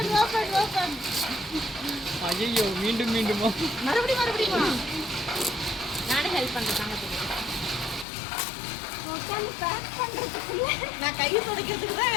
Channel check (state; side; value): drops out; right; at 8.1 s